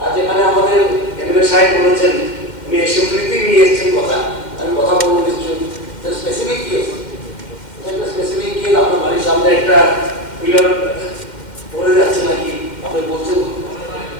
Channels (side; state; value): right; late; 2.1 ms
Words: আর যেখানে আমাদের এমএলএ সাহেব বলেছেন উনি অ্যাসেম্বলিতে নিয়ে এসেছেন কথা আমি কথা বলবো কিছু স্পেসিফিক কেস একটা স্পেসিফিক কেস আপনার বাড়ির সামনে একটা পিলার পড়ে যাচ্ছে নাকি আপনি বলছেন